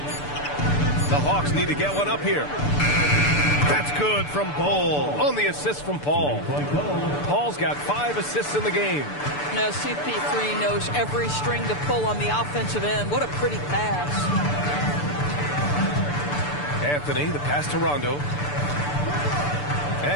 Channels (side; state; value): right; late; 6.8 ms